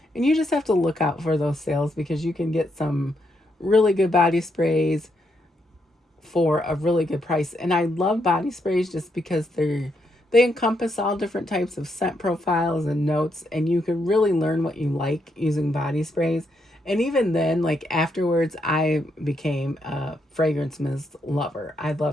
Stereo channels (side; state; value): both; normal; correlation 0.78